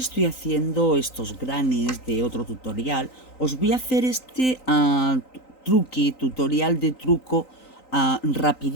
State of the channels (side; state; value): right; late; 3.9 ms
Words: estoy haciendo estos granis de otro tutorial, os voy a hacer este tutorial de truco